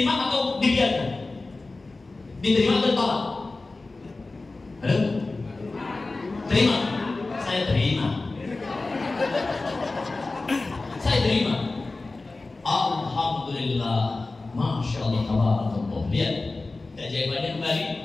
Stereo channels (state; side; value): quieter; right; 3.4 dB